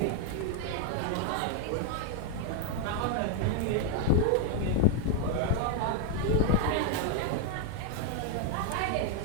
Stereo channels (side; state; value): both; different; correlation 0.01